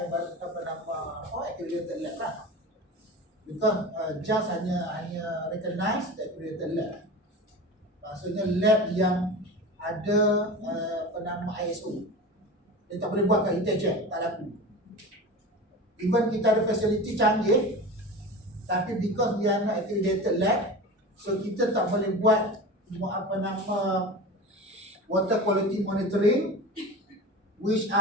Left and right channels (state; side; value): normal; both; correlation 0.31